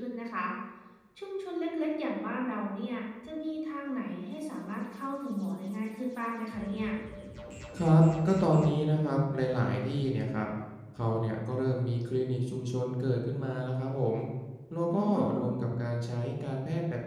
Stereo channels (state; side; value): identical; both; correlation 1.00